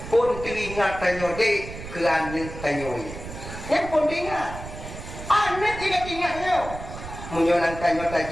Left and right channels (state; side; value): noise; right; rumble, 11 dB below the sound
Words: pun teringat tanya dek ke anak tanya yang pun teringat anak tidak ingat dia menyolang tanya